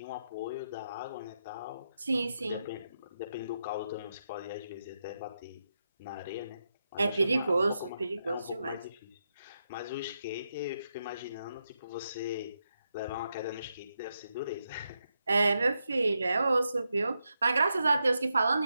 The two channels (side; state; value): both; inverted; correlation -0.84